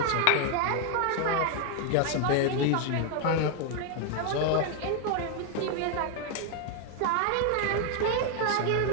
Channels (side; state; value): both; different; correlation 0.01